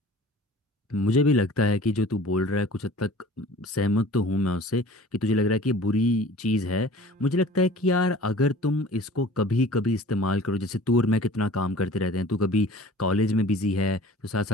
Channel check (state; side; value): normal; both; correlation 0.45